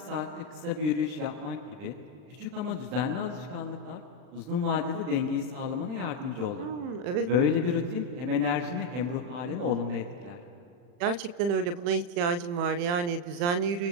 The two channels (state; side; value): late; left; 40 ms